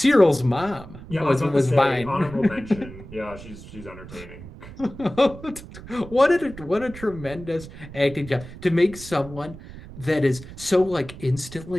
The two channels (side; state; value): right; noise; rumble, 15 dB below the sound